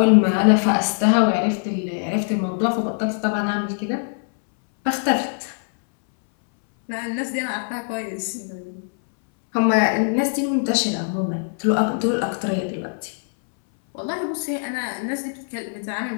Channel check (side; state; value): right; silent; 62 dB below the other